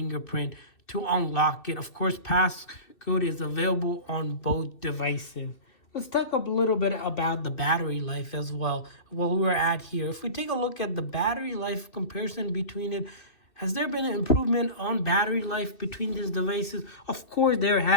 to unlock it. Of course, passcode is available on both devices. Let's talk a little bit about the battery life as well, where we're at here. If we take a look at the battery life comparison between it, has there been an improvement on battery life between these devices? Of course, there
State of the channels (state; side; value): late; right; 2.6 ms